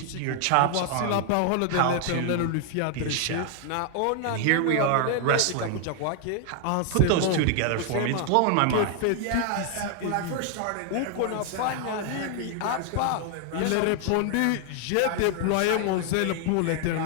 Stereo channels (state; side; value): different; both; correlation 0.00